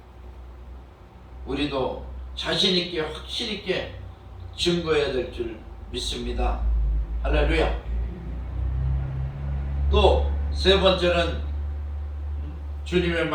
우리도 자신 있게 확실 있게 증거해야 될 줄 믿습니다. 할렐루야. 또 세 번째는 주님의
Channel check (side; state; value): both; identical; correlation 1.00